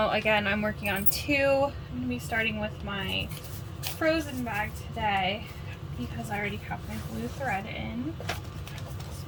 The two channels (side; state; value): both; identical; correlation 1.00